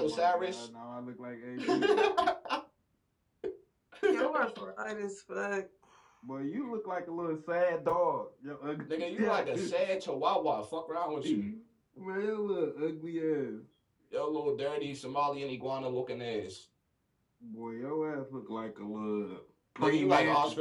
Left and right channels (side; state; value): both; identical; correlation 1.00